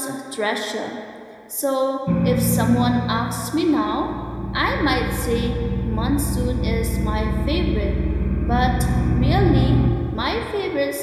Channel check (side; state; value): both; identical; correlation 1.00